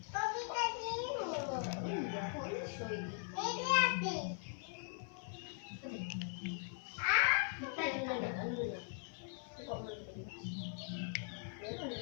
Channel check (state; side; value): silent; right; 51 dB below the other